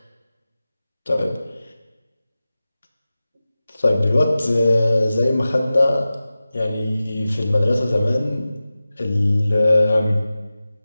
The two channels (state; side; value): inverted; both; correlation -0.96